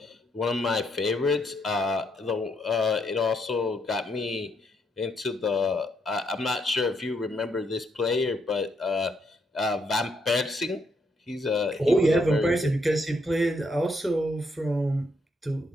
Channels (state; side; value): normal; both; correlation 0.75